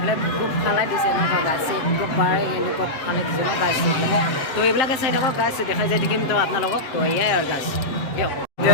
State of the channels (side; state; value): right; late; 7.6 ms